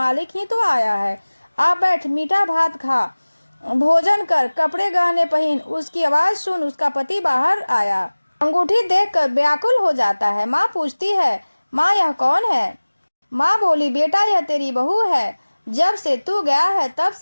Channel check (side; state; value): both; inverted; correlation -1.00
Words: ही तो आया है, आ बैठ, मीठा भात खा, भोजन कर, कपड़े गहने पहन। उसकी आवाज सुन उसका पति बाहर आया। अंगूठी देखकर व्याकुल हो जाता है। माँ पूछती है, माँ यह कौन है। माँ बोली, बेटा यह तेरी बहू है, जब से तू गया है तब